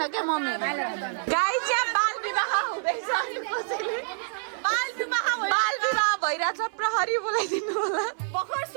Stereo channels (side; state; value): left; silent; 60 dB below the other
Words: क्या मम्मी गाइस यहाँ बाल विवाह हुँदैछ बाल विवाह भइरहेछ प्रहरी बोलाइदिनु होला भर्खर